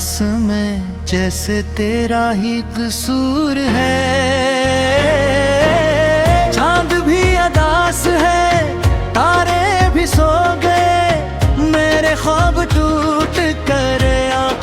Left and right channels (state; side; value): identical; both; correlation 1.00